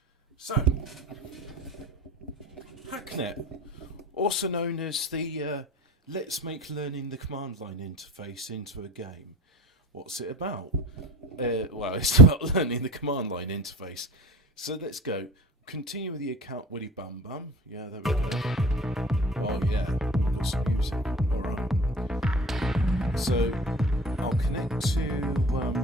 So, Hacknet, also known as the Let's Make Learning the Command Line interface into a game. What's it about? Well, it's about learning the command line interface. So let's go. Continue with the account Willy Bum Bum. Yeah, there we go. Oh yeah, we've got some music. Alright. So I'll connect to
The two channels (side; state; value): both; normal; correlation 0.39